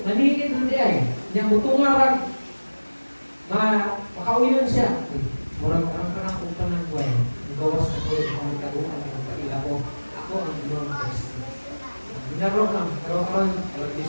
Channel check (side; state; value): both; inverted; correlation -1.00